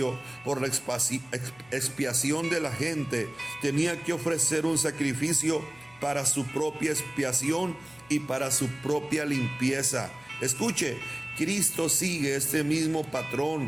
por la expiación de la gente, tenía que ofrecer un sacrificio para su propia expiación y para su propia limpieza. Escuche, Cristo sigue este mismo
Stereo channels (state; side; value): noise; left; hum, 28 dB below the sound